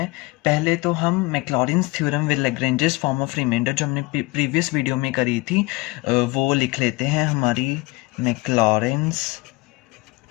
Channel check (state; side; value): quieter; right; 23.3 dB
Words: पहले तो हम Maclaurin's theorem with Lagrange's form of remainder जो हमने प्रीवियस वीडियो में करी थी वो लिख लेते हैं। हमारी Maclaurin's